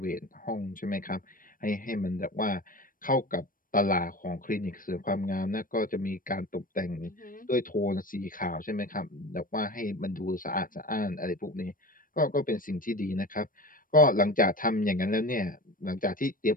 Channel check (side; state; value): right; late; 0.40 ms